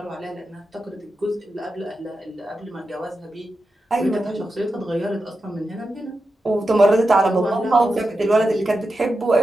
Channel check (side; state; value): both; normal; correlation 0.90